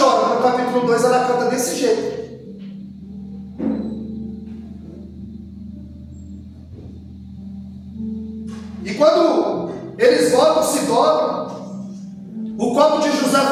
mas no capítulo 2 ela canta desse jeito. E quando eles voltam, se dobram, o copo de José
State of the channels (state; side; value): identical; both; correlation 1.00